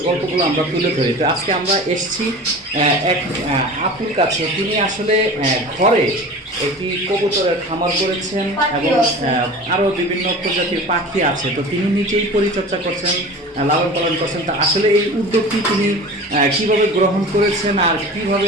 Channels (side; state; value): both; normal; correlation 0.37